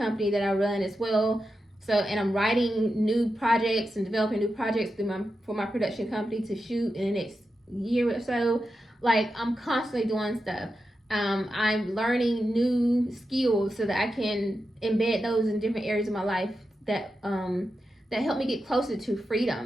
that I run as well. So, and I'm writing new projects and developing new projects for my production company to shoot in the next year or so. Like, I'm constantly doing stuff. I'm learning new skills so that I can embed those in different areas of my life that help me get closer to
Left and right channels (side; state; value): both; normal; correlation 0.89